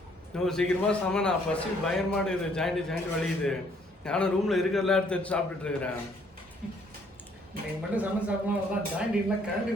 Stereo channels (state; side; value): normal; both; correlation 0.65